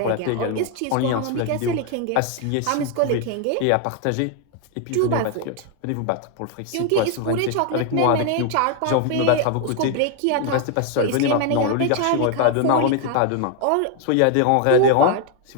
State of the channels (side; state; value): both; different; correlation 0.00